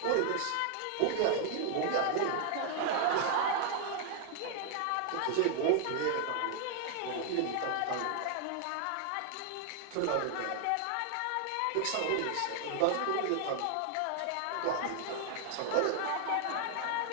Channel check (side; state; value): both; different; correlation 0.00